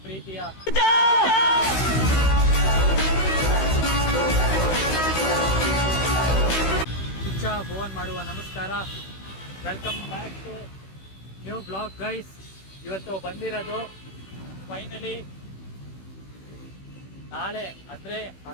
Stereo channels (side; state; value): right; late; 16 ms